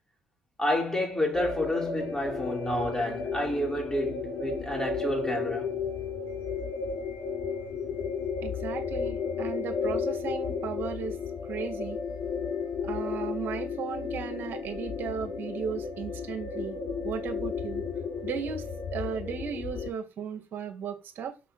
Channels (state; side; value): normal; both; correlation 0.66